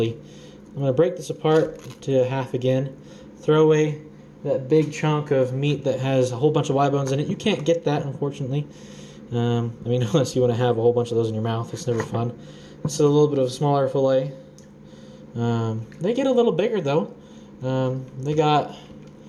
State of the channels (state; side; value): identical; both; correlation 1.00